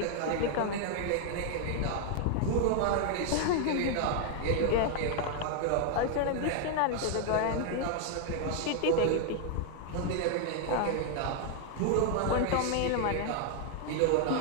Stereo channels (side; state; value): both; different; correlation 0.00